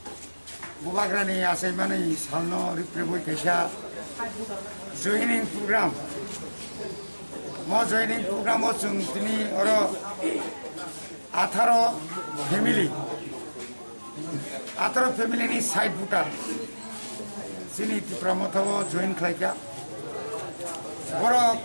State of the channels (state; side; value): inverted; both; correlation -1.00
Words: Bubagrani Asaimani Salno Riprebu Kesha joining program Mo joining program Otsung Tini Oro Atharo family ni side putar Sini Tipramotavo join Klaika Boro